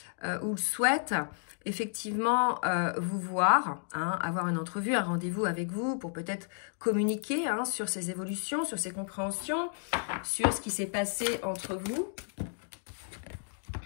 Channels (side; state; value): right; silent; digital silence